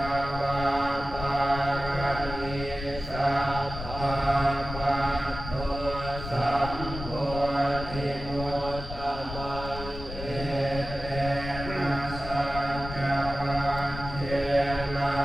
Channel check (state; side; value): noise; left; rumble, 9 dB below the sound